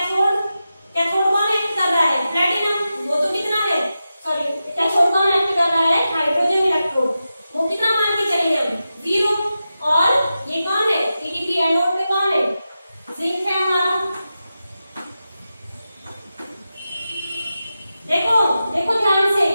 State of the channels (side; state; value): both; inverted; correlation -0.91